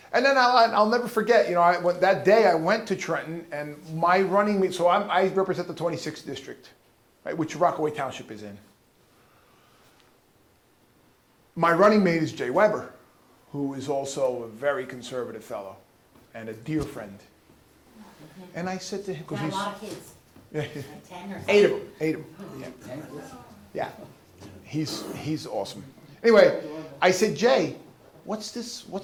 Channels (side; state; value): both; identical; correlation 1.00